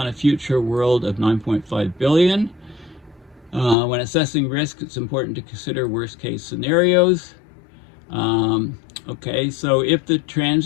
a future world of 9.5 billion. When assessing risk, it's important to consider worst case scenarios. Okay, so if the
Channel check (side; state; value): right; drops out; at 3.8 s